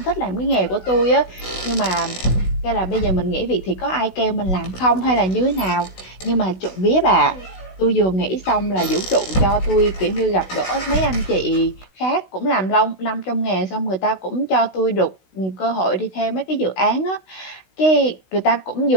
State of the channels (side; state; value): right; late; 16 ms